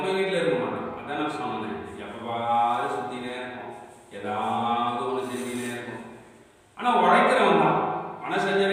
வீட்டில் இருக்க மாட்டான். அதான் நான் சொன்னேன், எப்பவாது சுற்றினே இருக்கும், ஏதாவது ஒன்று செஞ்சுனே இருக்கும். ஆனால் உழைக்கிறவன் தான்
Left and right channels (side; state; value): both; identical; correlation 1.00